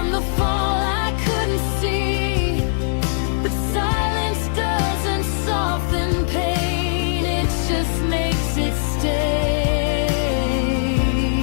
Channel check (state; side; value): silent; right; digital silence